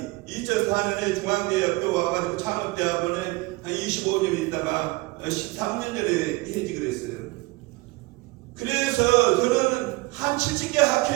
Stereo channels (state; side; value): quieter; left; 22.4 dB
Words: 2004년에 중앙대학교 와가지고 창업대학원에 한 25년 있다가 13년 전에 해직을 했어요. 그래서 저는 한 70개